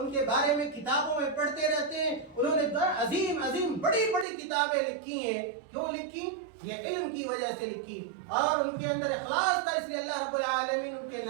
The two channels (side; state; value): left; drops out; at 4.2 s